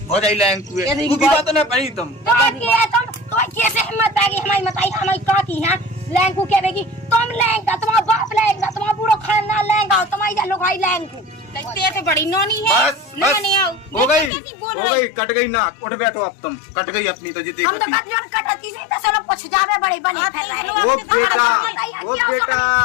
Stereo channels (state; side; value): drops out; right; at 14.3 s